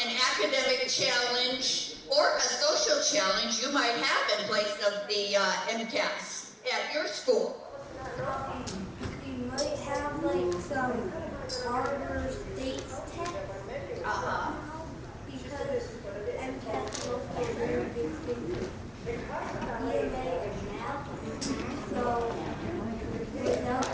academic challenge or a social challenge you might have in place of the MCAS at your school? You might have like some harder states test. Because MCAS is a very big thing. EMA and math. So without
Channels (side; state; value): both; identical; correlation 1.00